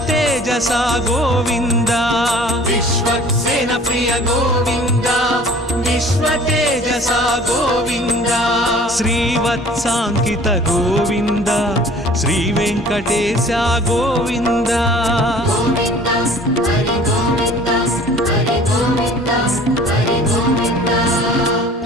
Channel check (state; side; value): normal; both; correlation 0.49